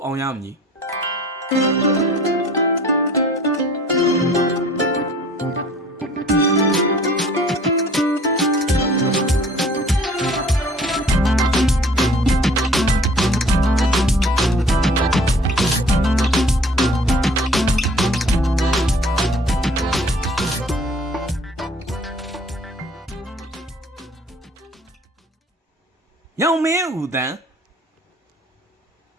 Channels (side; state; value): both; normal; correlation 0.52